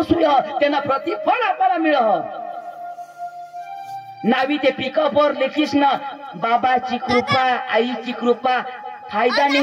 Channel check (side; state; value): both; identical; correlation 1.00